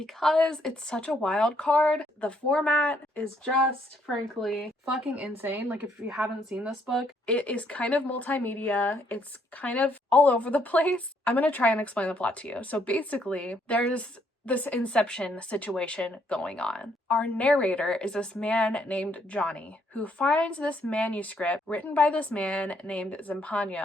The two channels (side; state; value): both; normal; correlation 0.70